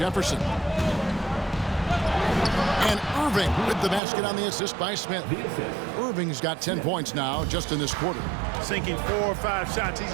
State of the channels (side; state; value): left; drops out; at 4.0 s